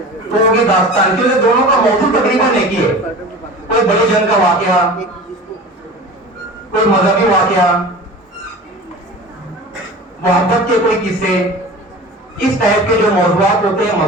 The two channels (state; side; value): normal; both; correlation 0.37